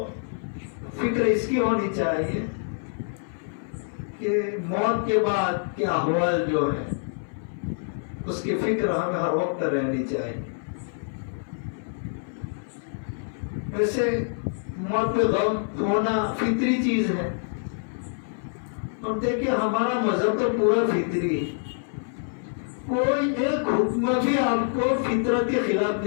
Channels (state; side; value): silent; right; 58 dB below the other